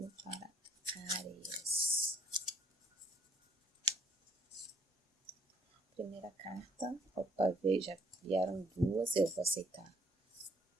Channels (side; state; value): both; normal; correlation 0.63